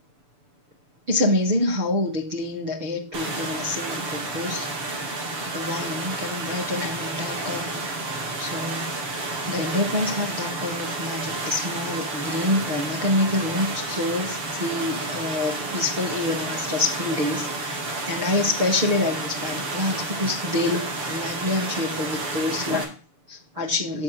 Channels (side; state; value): left; late; 6.9 ms